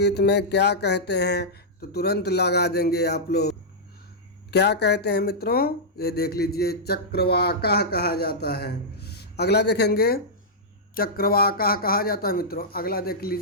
में क्या कहते हैं, तो तुरंत लगा देंगे आप लोग। क्या कहते हैं मित्रों, ये देख लीजिए चक्रवाकाह कहा जाता है। अगला देखेंगे चक्रवाकाह कहा जाता है। मित्रों अगला देख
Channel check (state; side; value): normal; both; correlation -0.10